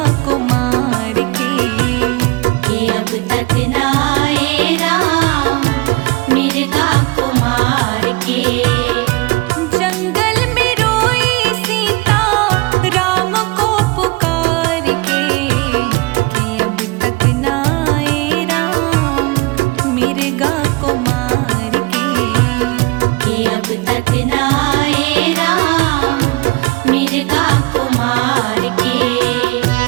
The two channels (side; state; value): left; quieter; 23.7 dB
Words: को मार के, कि अब तक ना आए राम मिर्गा को मार के। जंगल में रोई सीता राम को पुकार के, कि अब तक ना आए राम मिर्गा को मार के, कि अब तक ना आए राम मिर्गा को मार